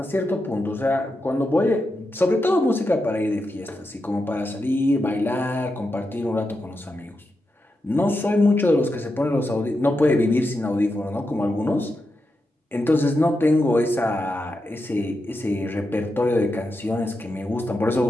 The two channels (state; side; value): normal; both; correlation 0.87